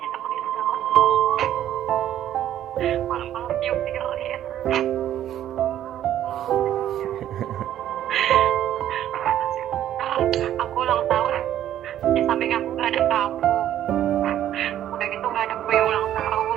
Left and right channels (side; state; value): left; quieter; 11.6 dB